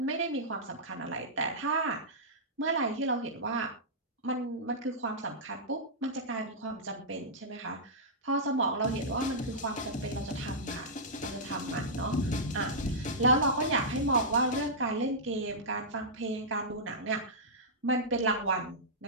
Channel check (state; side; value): normal; both; correlation -0.13